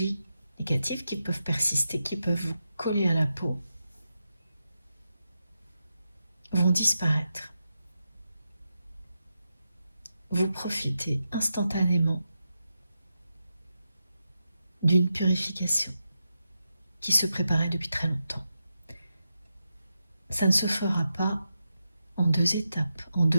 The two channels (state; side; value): inverted; both; correlation -0.88